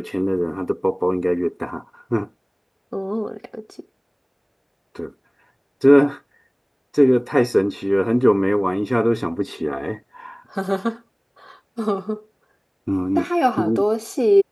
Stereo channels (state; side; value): identical; both; correlation 1.00